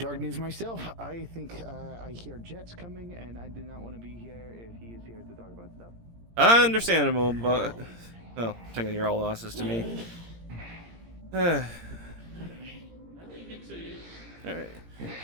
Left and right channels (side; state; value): left; late; 17 ms